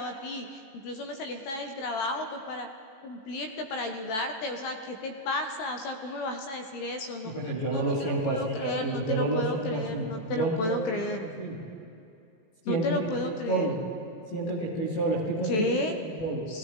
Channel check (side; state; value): right; late; 18 ms